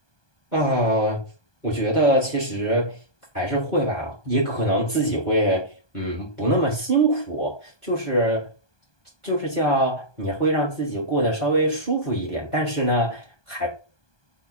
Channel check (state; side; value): late; right; 1.2 ms